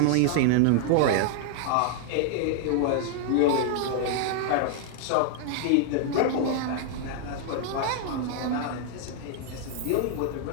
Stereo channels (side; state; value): both; different; correlation 0.00